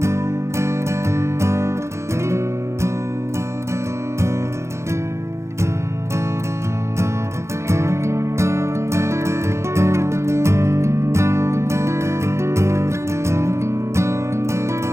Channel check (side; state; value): left; late; 0.14 ms